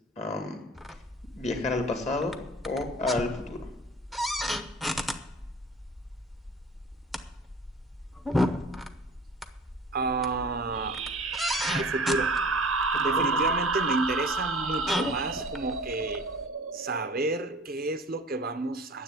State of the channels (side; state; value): both; normal; correlation 0.43